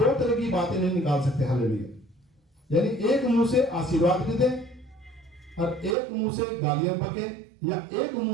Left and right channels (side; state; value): left; drops out; at 6.0 s